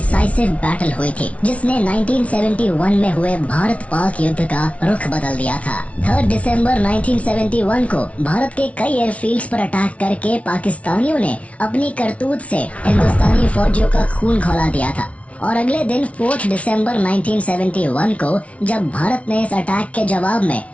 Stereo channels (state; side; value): late; right; 0.064 ms